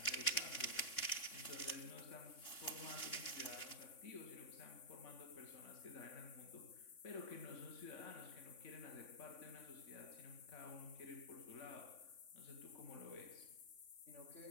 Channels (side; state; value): right; late; 3.5 ms